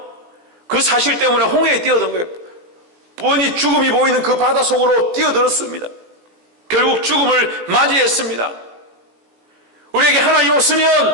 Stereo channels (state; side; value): late; left; 17 ms